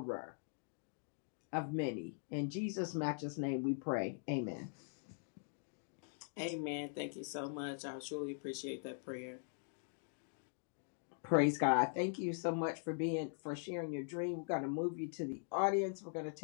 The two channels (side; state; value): right; silent; digital silence